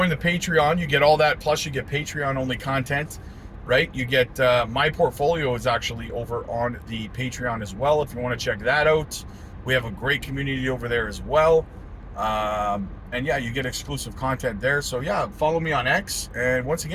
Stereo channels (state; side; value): identical; both; correlation 1.00